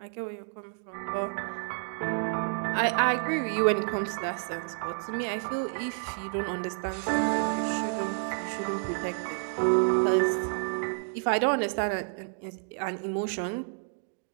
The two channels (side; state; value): left; silent; 58 dB below the other